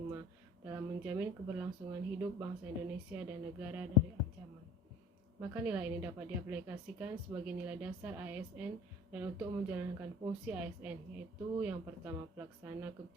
dalam menjamin keberlangsungan hidup bangsa Indonesia dan negara dari ancaman. Maka nilai ini dapat diaplikasikan sebagai nilai dasar ASN dan untuk menjalankan fungsi ASN, yaitu yang pertama pelaksana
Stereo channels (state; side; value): normal; both; correlation 0.45